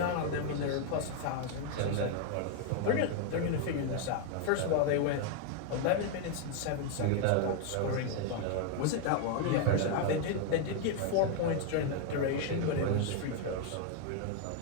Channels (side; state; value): both; different; correlation 0.00